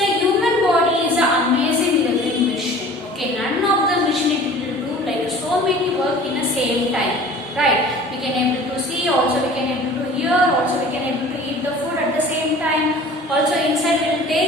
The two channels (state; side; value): normal; both; correlation 0.45